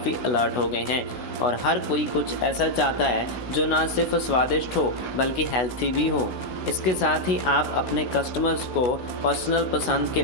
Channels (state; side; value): late; right; 16 ms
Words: अलर्ट हो गए हैं और हर कोई कुछ ऐसा चाहता है जो ना सिर्फ स्वादिष्ट हो बल्कि हेल्थी भी हो। इसके साथ ही आप अपने कस्टमर्स को पर्सनल पसंद के